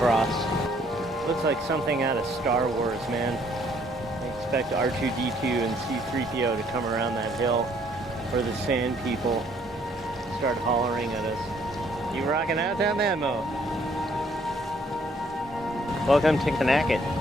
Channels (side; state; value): both; normal; correlation 0.64